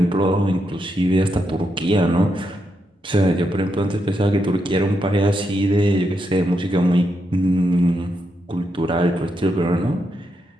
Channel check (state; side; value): normal; both; correlation 0.82